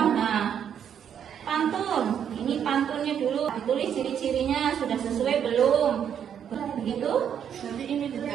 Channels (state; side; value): quieter; left; 8.6 dB